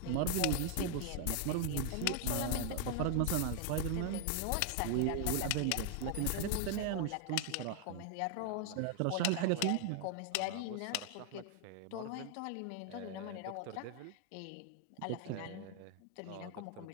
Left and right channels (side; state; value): both; different; correlation 0.00